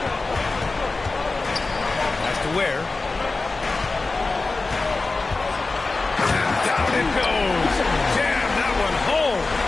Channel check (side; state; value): right; quieter; 3.6 dB